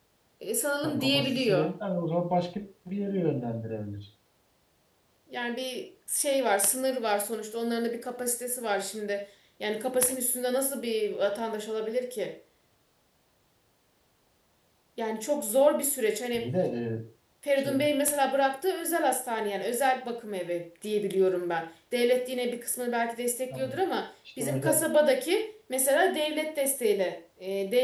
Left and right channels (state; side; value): identical; both; correlation 1.00